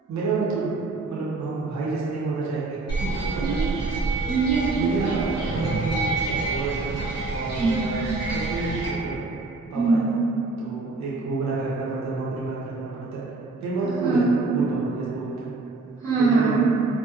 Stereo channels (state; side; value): quieter; left; 3.4 dB